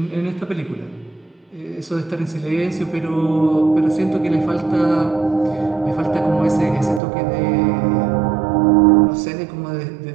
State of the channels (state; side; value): drops out; left; at 7.0 s